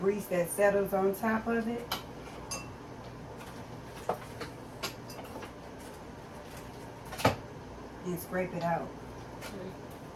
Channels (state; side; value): identical; both; correlation 1.00